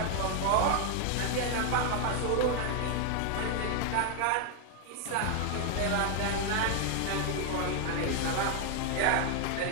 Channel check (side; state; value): both; different; correlation 0.00